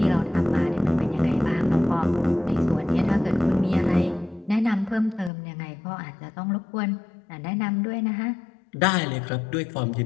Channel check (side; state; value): right; drops out; at 5.3 s